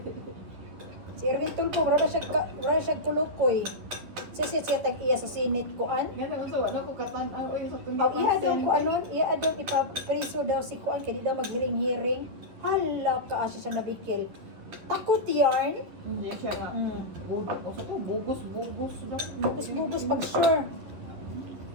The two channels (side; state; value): left; late; 11 ms